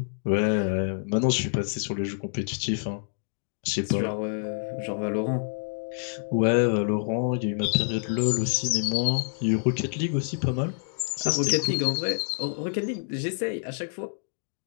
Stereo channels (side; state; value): right; silent; digital silence